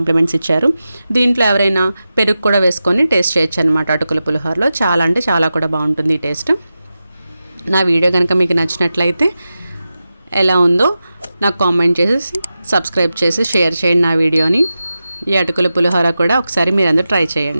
ఇచ్చారు. దీంట్లో ఎవరైనా పెరుగు కూడా వేసుకొని టేస్ట్ చేయొచ్చు అనమాట. అటుకుల పులిహోరలో చాలా అంటే చాలా కూడా బాగుంటుంది ఈ టేస్ట్. నా వీడియో కనుక మీకు నచ్చినట్లయితే ఎలా ఉందో నాకు కామెంట్ చేసి సబ్స్క్రైబ్ చేసి షేర్ చేయండి నా వీడియోని. ఈ అటుకుల పులిహోర కూడా ఒకసారి మీరందరూ ట్రై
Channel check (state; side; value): inverted; both; correlation -0.93